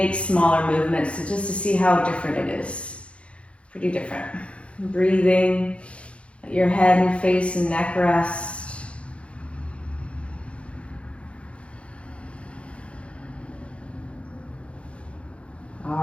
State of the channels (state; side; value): late; right; 0.060 ms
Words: smaller movements just to see how different it is. Pretty different. Breathing, let your head and face and neck rest.